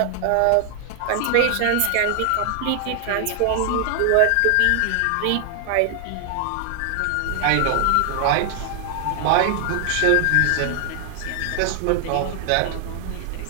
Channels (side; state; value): both; different; correlation 0.00